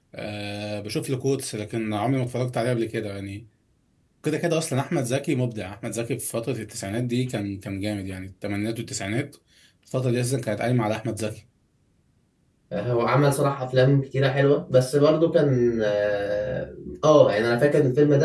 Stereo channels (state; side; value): identical; both; correlation 1.00